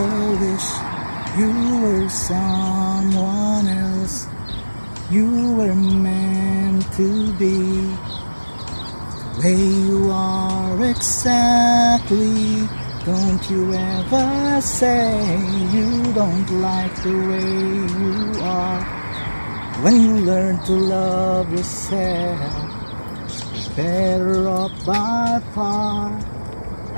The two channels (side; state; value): both; inverted; correlation -1.00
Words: wish you were someone else. You were meant to be the way you are exactly. Don't you ever say you don't like the way you are. When you learn to love yourself, you're better off by far.